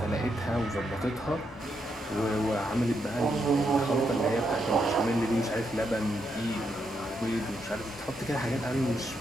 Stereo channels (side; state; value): both; normal; correlation 0.80